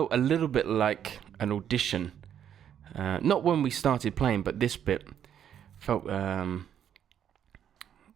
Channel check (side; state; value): left; quieter; 9.4 dB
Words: a little bit like an audition. Not when we started playing, but this bit felt, yeah,